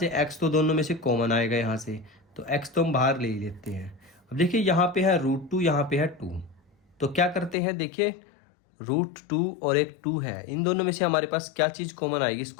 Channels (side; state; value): right; drops out; at 7.6 s